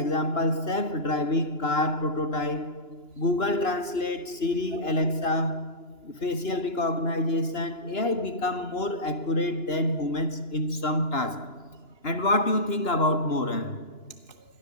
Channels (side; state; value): right; late; 2.9 ms